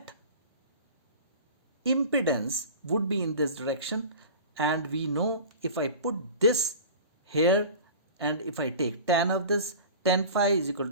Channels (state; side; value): inverted; both; correlation -0.37